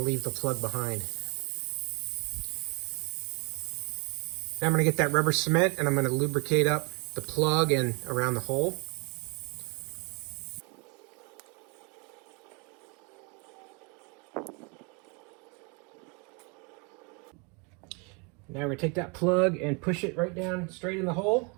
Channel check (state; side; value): quieter; left; 32.2 dB